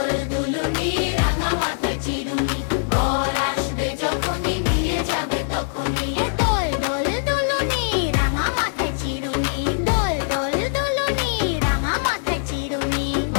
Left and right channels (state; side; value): silent; right; digital silence